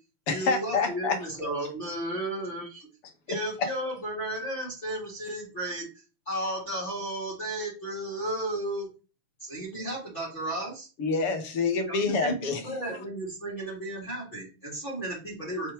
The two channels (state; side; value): late; right; 6.9 ms